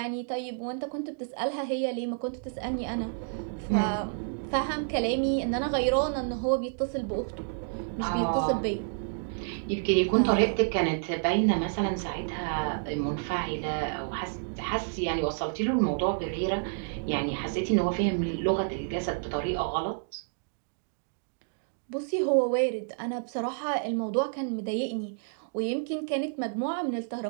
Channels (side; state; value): left; silent; digital silence